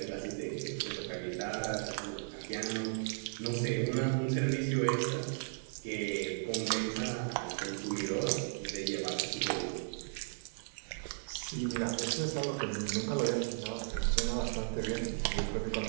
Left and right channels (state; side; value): silent; left; 54 dB below the other